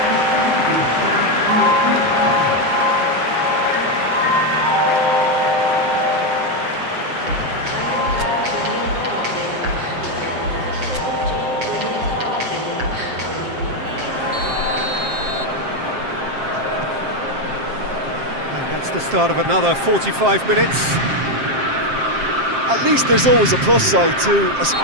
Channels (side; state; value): left; late; 7.6 ms